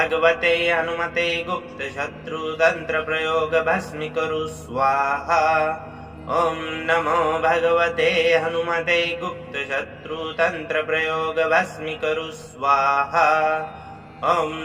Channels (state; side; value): identical; both; correlation 1.00